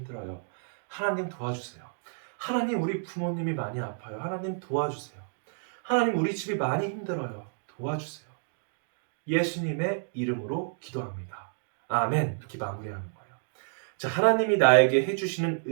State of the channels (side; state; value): left; silent; digital silence